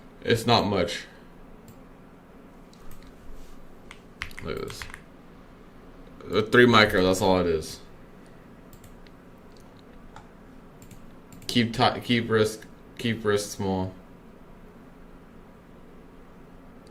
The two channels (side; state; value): both; identical; correlation 1.00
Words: It's not much. Look at this. 3 micro, that's all it is. Keep risk small.